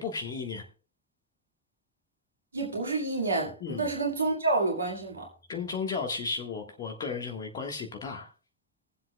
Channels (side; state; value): both; inverted; correlation -0.38